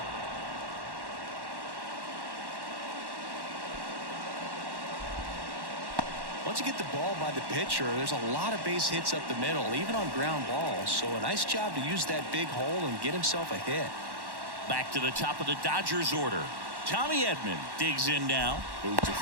Once you get the ball by the pitcher, there's a lot of base hits up the middle, even on ground balls. So a nice job to use that big hole and get himself a hit. Back to the top of the Dodgers order. Tommy Edman digs in now. Move to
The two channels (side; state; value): left; late; 1.1 ms